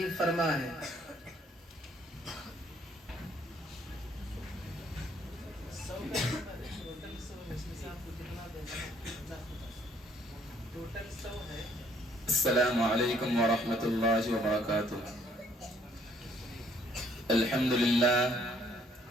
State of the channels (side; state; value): both; normal; correlation 0.63